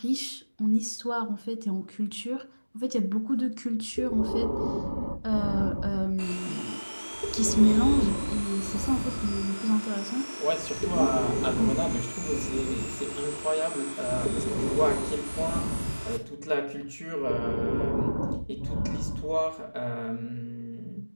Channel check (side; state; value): both; inverted; correlation -1.00